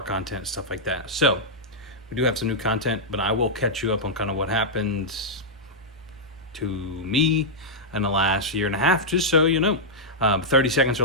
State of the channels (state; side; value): normal; both; correlation -0.08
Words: content, stuff like that. So we do have some new content, but I will catch you up on kind of what happened to me in the last year and a half, just so you know. 30 seconds